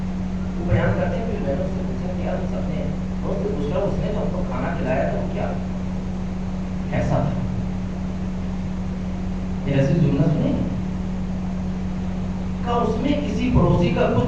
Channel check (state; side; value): identical; both; correlation 1.00